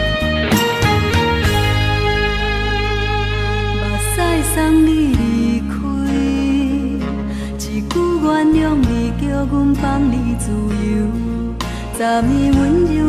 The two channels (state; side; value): identical; both; correlation 1.00